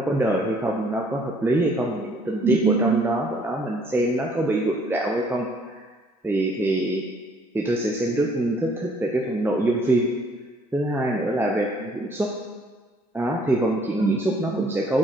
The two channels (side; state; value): both; normal; correlation 0.62